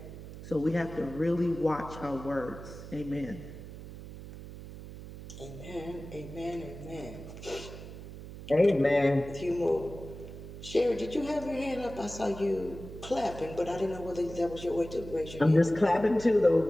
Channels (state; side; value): noise; right; hum, 13 dB below the sound